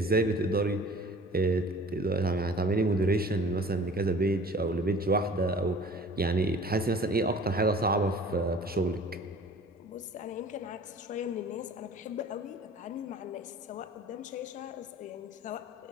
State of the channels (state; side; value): normal; both; correlation 0.46